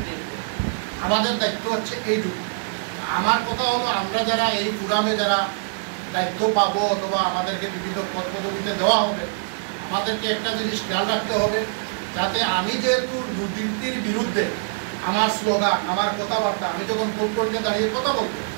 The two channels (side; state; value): left; silent; digital silence